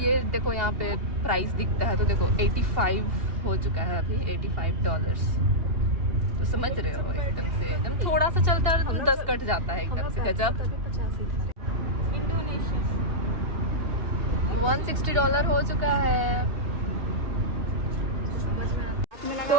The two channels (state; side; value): late; left; 2.8 ms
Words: देखो यहाँ पे प्राइस दिखता है, तो देखो 85 हो चुका है अभी, $85। तो समझ रहे हो, एकदम से एकदम थोड़ा सा चलता है और तुम 10 कट जाता है एकदम से, गजब। $160 हो चुका है।